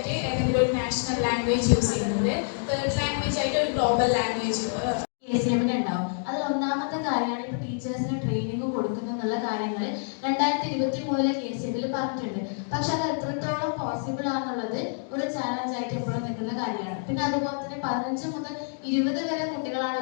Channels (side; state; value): right; silent; digital silence